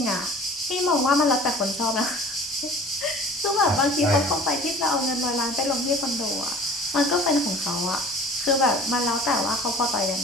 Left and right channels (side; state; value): both; normal; correlation 0.45